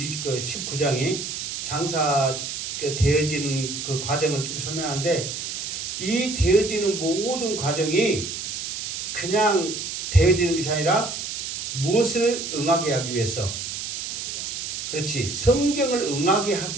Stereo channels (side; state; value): right; noise; hiss, 5 dB below the sound